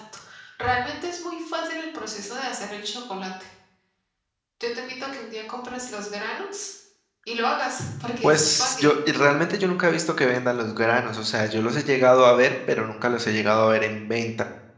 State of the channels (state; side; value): identical; both; correlation 1.00